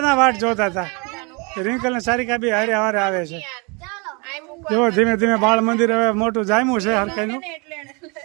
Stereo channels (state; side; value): quieter; left; 30.8 dB